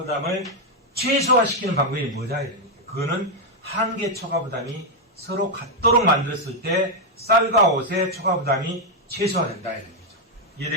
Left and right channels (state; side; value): normal; both; correlation 0.00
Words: 최소화시키는 방법이 뭐냐? 그거는 한계 초과 부담이 서로 같도록 만들었을 때 쌀과 옷의 초과 부담이 최소화된다. 이런 거죠.